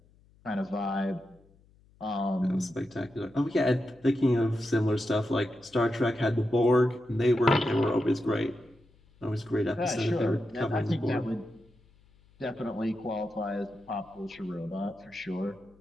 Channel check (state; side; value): noise; left; hum, 30 dB below the sound